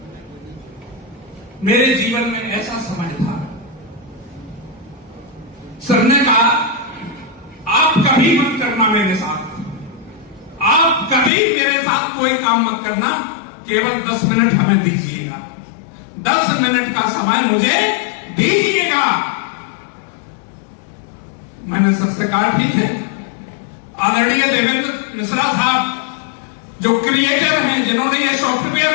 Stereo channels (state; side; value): drops out; right; at 11.3 s